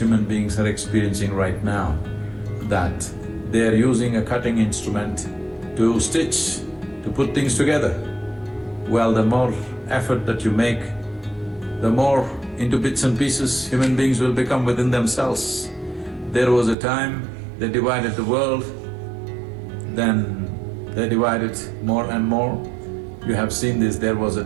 beings are experiencing right now, that they are using a cutting instrument to stitch, to put things together. Well, the more effort that you make, the more into bits and pieces human beings will become within themselves. There was a time they divided the world, then They divide it more and more. You have seen this, there was a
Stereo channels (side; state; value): left; drops out; at 16.8 s